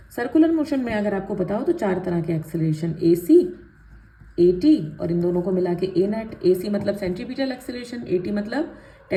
सर्कुलर मोशन में अगर आपको पता हो तो चार तरह के acceleration, A C, A T और इन दोनों को मिला के ए नेट। ए सी मतलब सेंट्रीपिटल एक्सेलरेशन, ए टी मतलब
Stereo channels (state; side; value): identical; both; correlation 1.00